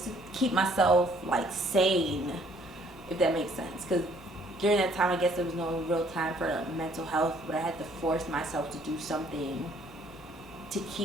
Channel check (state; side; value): noise; right; hum, 26 dB below the sound